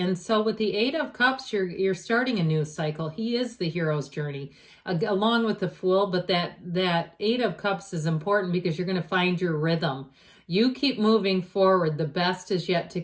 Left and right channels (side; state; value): both; identical; correlation 1.00